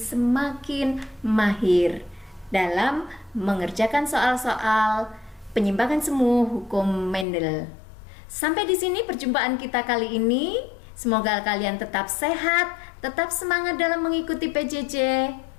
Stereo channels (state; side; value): drops out; right; at 7.2 s